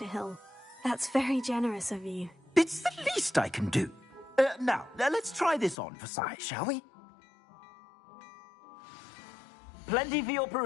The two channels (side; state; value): right; drops out; at 5.8 s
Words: Hill. That's very generous of you. It's the least I can do. Now, let's try this on for size, shall we? Plenty for your